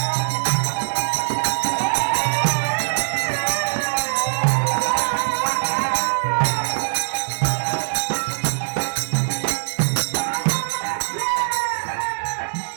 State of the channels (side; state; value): left; silent; 64 dB below the other